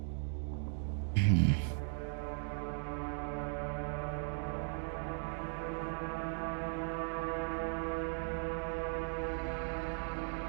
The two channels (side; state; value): left; silent; 52 dB below the other